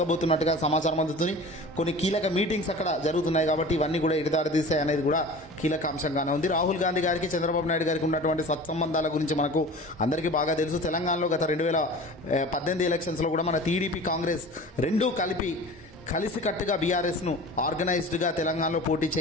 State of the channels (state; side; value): normal; both; correlation 0.38